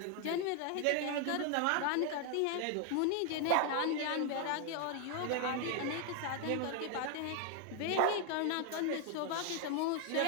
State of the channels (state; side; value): different; both; correlation 0.00